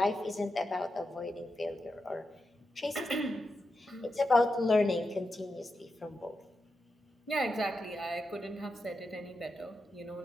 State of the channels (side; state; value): both; normal; correlation 0.88